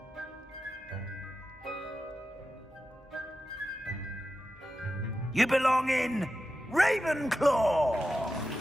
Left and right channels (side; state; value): both; normal; correlation 0.91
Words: You belong in Ravenclaw!